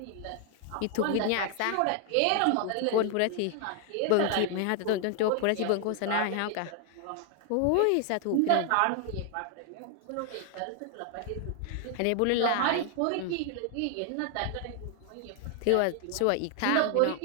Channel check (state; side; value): different; both; correlation 0.00